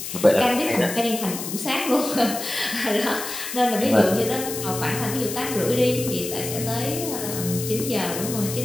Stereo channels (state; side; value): noise; left; hiss, 7 dB below the sound